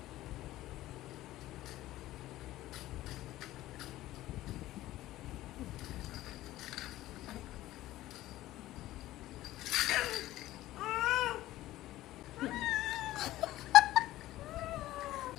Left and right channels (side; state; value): right; quieter; 15.7 dB